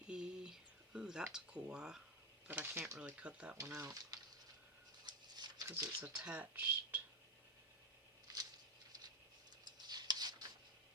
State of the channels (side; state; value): both; normal; correlation 0.11